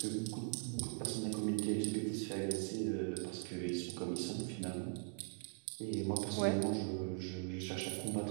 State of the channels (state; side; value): silent; left; 51 dB below the other